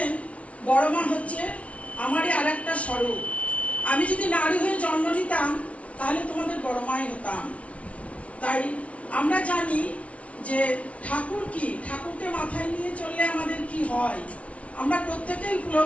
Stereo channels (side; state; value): right; late; 0.064 ms